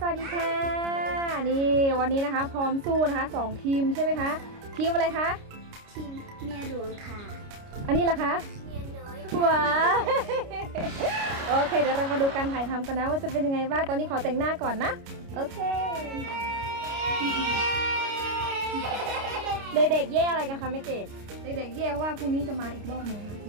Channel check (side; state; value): left; late; 29 ms